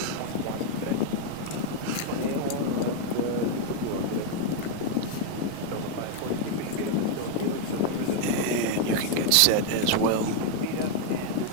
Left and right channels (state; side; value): different; both; correlation 0.00